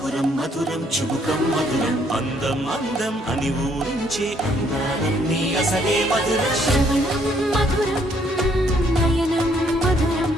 మధురం చుబుకం మధురం అందం అందం అని ఊరించే అందాలన్నీ అసలే మధురం శ్రవణం మధురం నయనం మధురం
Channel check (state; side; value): normal; both; correlation 0.67